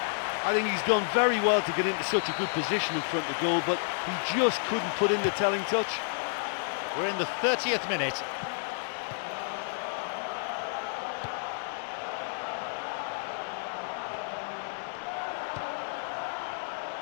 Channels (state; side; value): silent; right; digital silence